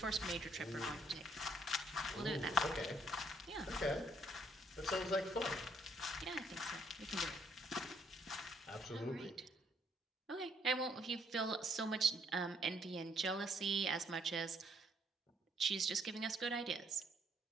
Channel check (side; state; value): both; normal; correlation 0.68